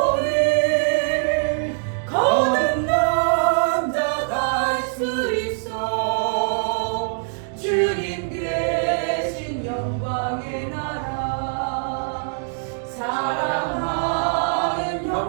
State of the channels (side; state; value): left; silent; digital silence